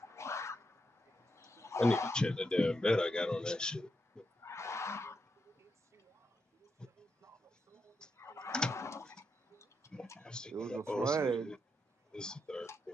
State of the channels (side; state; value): both; normal; correlation 0.83